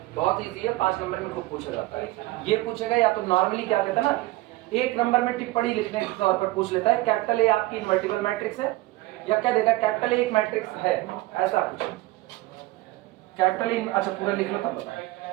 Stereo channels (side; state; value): left; quieter; 18.9 dB